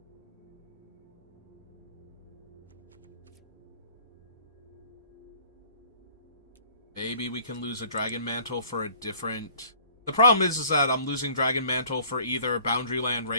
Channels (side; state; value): both; inverted; correlation -0.53